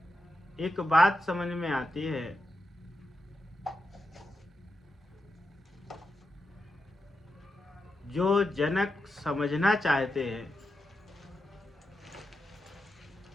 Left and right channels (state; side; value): normal; both; correlation 0.87